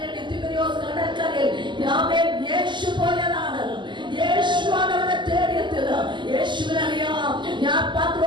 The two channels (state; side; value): late; left; 0.22 ms